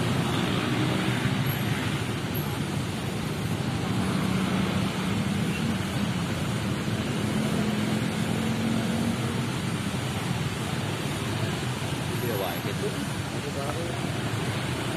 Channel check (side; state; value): both; identical; correlation 1.00